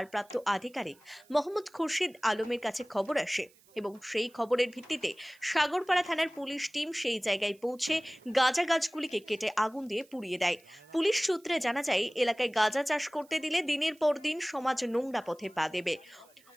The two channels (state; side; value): noise; right; hiss, 29 dB below the sound